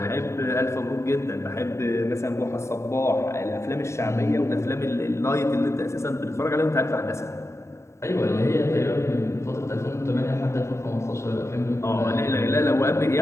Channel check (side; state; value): right; late; 0.14 ms